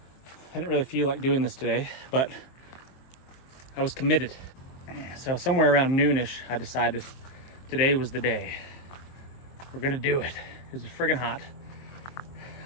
I didn't really feel like doing this today, but I was committed. So somewhere around noonish, I decided today was the day. We're gonna do it. It was friggin' hot.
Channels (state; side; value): late; right; 23 ms